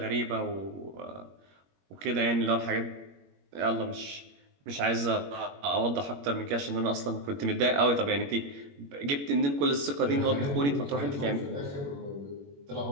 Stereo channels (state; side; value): late; left; 21 ms